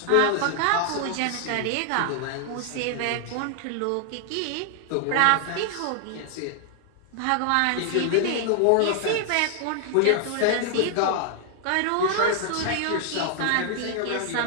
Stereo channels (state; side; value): different; both; correlation 0.00